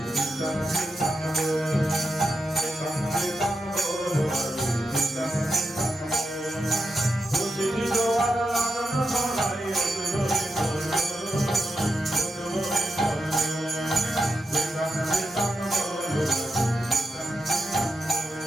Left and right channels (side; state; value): both; normal; correlation 0.87